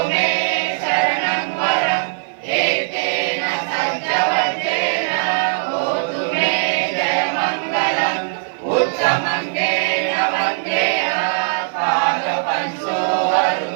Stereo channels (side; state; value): left; silent; 66 dB below the other